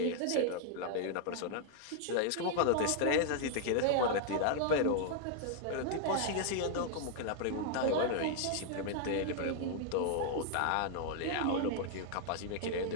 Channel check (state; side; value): different; both; correlation 0.00